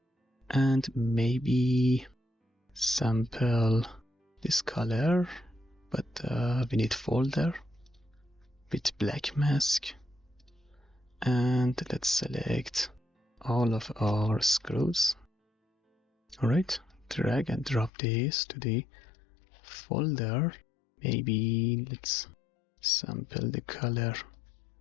and maybe sample this color, but we need folder with black mask, and let's select all of our screws. Alright, drag and drop this to the folder. Maybe let's sample the color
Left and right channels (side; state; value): right; drops out; at 17.9 s